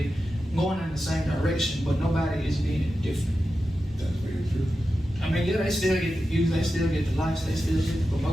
going in the same direction, but nobody is being different. That's very true. I mean, yeah, they still get the views, they still get the likes, they still get the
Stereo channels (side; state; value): both; normal; correlation 0.91